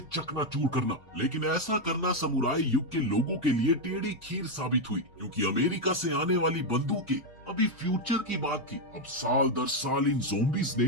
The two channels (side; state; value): both; normal; correlation 0.04